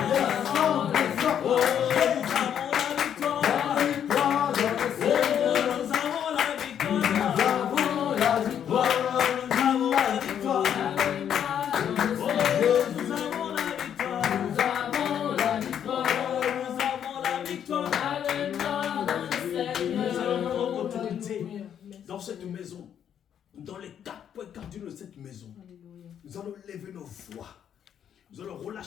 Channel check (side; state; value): right; quieter; 9.1 dB